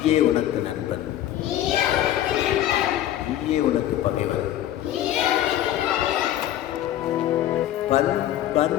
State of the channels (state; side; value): quieter; right; 12.3 dB